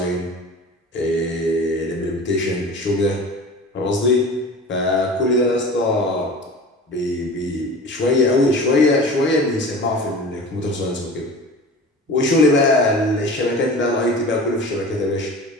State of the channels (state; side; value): normal; both; correlation 0.37